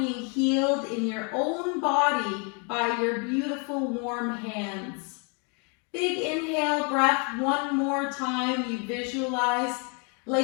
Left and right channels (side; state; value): right; quieter; 36.0 dB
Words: healed in your own body by your beautiful warm hands. Big inhale breath one more time. You visualize